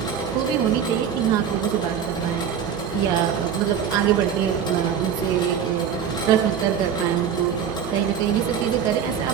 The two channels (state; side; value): quieter; left; 8.1 dB